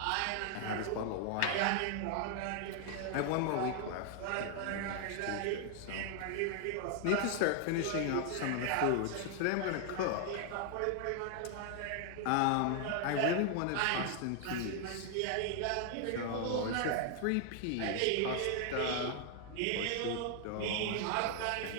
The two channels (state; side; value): different; both; correlation 0.00